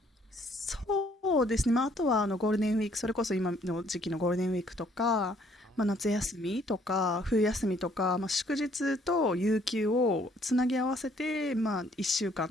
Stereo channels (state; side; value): normal; both; correlation 0.64